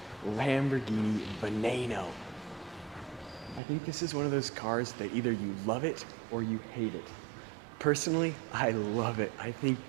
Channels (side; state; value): left; drops out; at 3.6 s